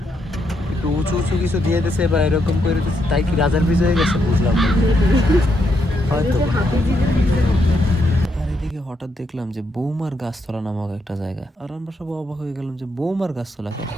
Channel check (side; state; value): both; normal; correlation 0.79